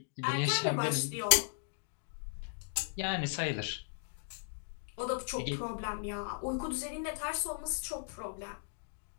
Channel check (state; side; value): silent; right; digital silence